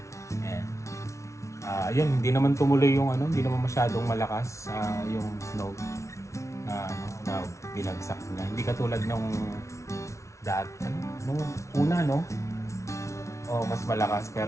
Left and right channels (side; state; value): right; late; 0.14 ms